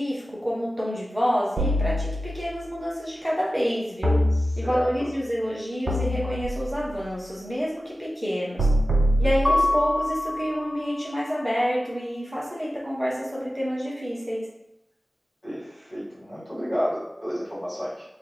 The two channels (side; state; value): both; normal; correlation 0.94